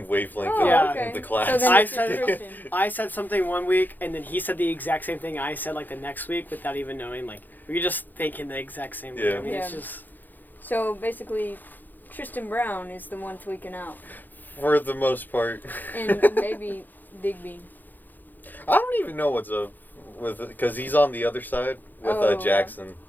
wavelength okay. in the class. So then I said something one week, and then he said the exact same thing I said, like, the next week without even knowing. Like, we were just thinking the exact same thing. Yeah. I mean, Yeah. it's just... So, basically, Tristan Brown is the one tweaking out. For the most part. And maybe Digby. I don't even know what's up with, because he's on the other side with Jackson.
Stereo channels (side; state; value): right; late; 0.086 ms